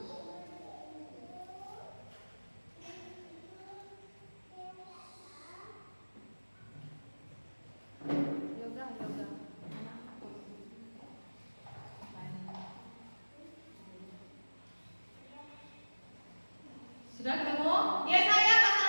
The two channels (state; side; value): inverted; both; correlation -1.00